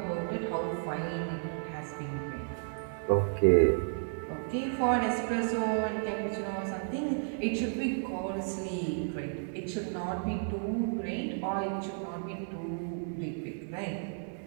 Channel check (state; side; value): silent; left; digital silence